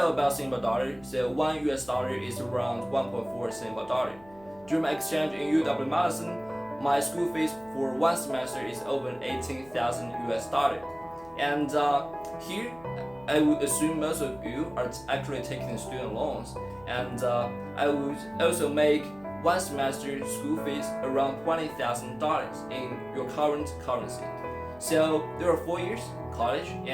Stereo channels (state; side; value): noise; left; hum, 24 dB below the sound